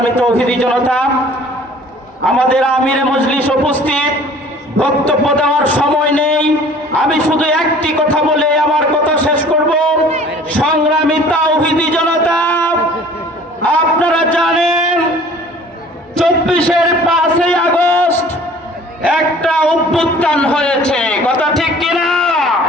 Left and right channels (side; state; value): both; normal; correlation 0.50